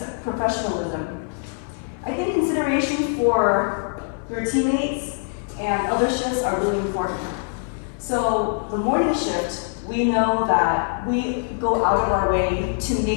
professionalism, I think consideration for your teammates and other shifts are really important. So the morning shift, we know that we go out of our way to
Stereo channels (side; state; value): right; silent; 62 dB below the other